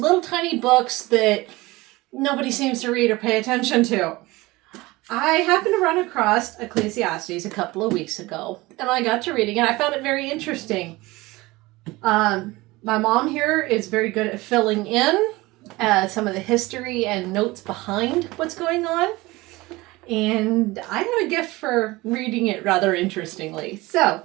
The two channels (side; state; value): left; quieter; 21.0 dB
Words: tiny books that nobody seems to read or pay attention to. I happened to run across Ecclesiastes a couple of weeks ago, and I got to reading it. I found it very interesting. My mom here is very good at filling in some of the history and notes behind what's going on. And I have a gift for reading it rather interestingly. So,